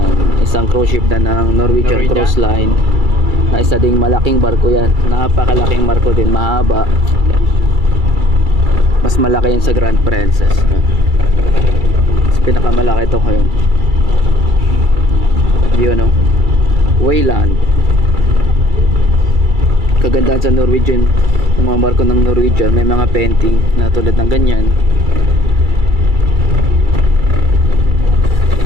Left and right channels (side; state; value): left; late; 2.3 ms